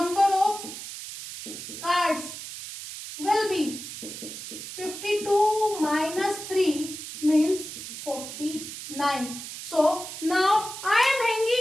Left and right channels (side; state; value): right; noise; hiss, 10 dB below the sound